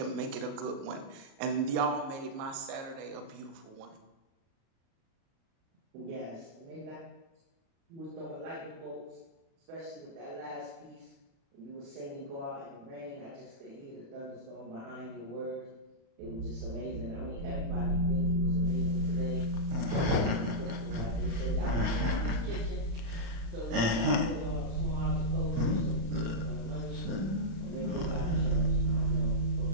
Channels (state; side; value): late; left; 35 ms